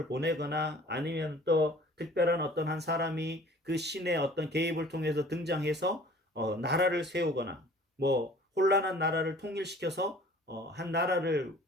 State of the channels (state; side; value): normal; both; correlation 0.49